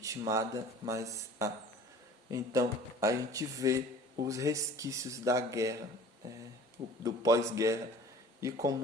mas há. Então a gente vê os resquícios da guerra, do pós-guerra, e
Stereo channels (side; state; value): both; normal; correlation 0.45